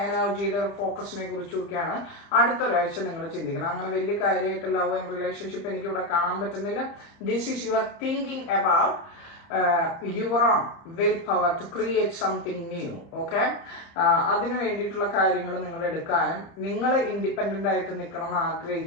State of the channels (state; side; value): late; right; 30 ms